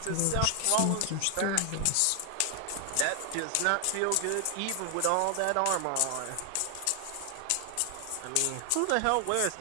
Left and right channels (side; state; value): both; different; correlation 0.00